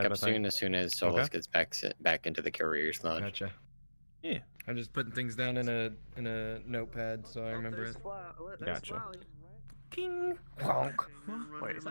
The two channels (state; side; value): inverted; both; correlation -1.00